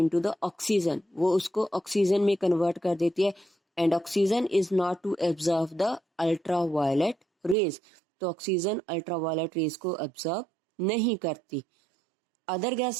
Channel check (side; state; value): left; drops out; at 7.6 s